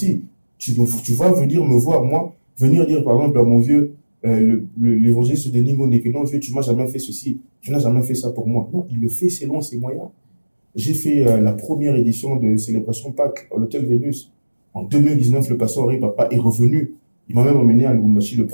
Tu vas venir me voir, moi, venir dire, par exemple, à mon vieux, l'évangéliste de Ningo n'est que non, vieux, tu m'as jamais fait ceci, tu n'as jamais fait ça pour moi. Non, il le fait selon ses moyens. J'ai fait la première édition de Célébration Pâques à l'Hôtel Vénus. En 2019, le pasteur Henri Papa est revenu. Il m'a même emmené à Lubumbashi. Le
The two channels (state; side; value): inverted; both; correlation -1.00